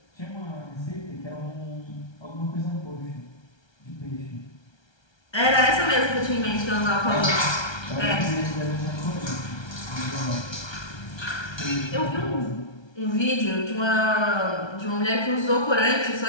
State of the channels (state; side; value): late; right; 1.3 ms